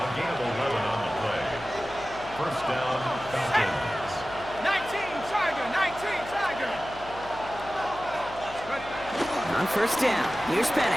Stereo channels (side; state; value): left; noise; hum, 16 dB below the sound